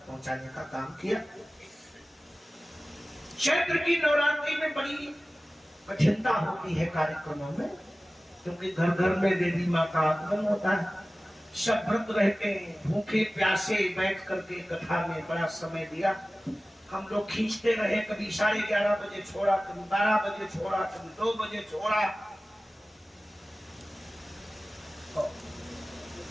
पहुंचाने का काम किया। चैत्र की नवरात्रि में बड़ी कठिनता होती है कार्यक्रमों में, क्योंकि घर घर में देवी माँ का आगमन होता है। सब व्रत रहते हैं, भूखे प्यासे बैठ करके कथा में बड़ा समय दिया। हम लोग खींचते रहे, कभी 11:30 बजे छोड़ा, कभी 12 बजे छोड़ा, कभी 2 बजे छोड़ा।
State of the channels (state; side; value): normal; both; correlation 0.97